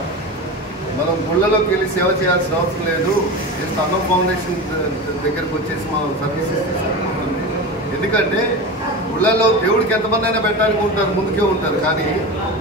మనం గుళ్ళలోకి వెళ్ళి సేవ చేయాల్సిన అవసరం లేదు, జస్ట్ అన్నం ఫౌండేషన్ దగ్గరకు వచ్చేసి మనం సర్వీసెస్ తీసుకుంటుంది. ఎందుకంటే గుళ్ళలో దేవుడికి ఎంతమంది అయినా పెట్టడానికి ఉంటారు, ముందుకే ఉంటారు, కానీ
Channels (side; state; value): both; normal; correlation 0.26